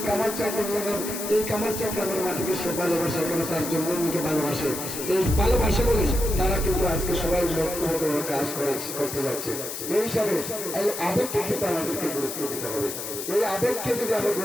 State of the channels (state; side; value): noise; left; hiss, 6 dB below the sound